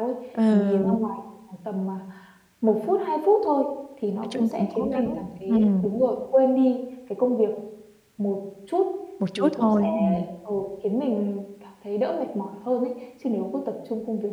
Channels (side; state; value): both; identical; correlation 1.00